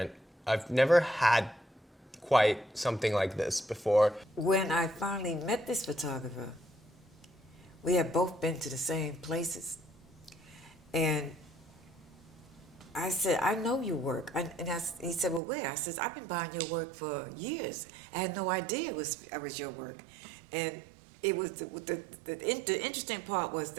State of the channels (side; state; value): left; drops out; at 15.4 s